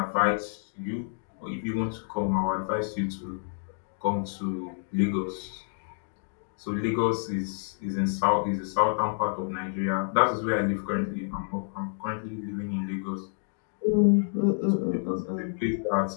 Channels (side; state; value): right; silent; digital silence